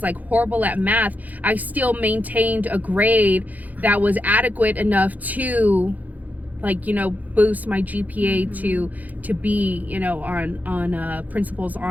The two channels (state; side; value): late; left; 0.080 ms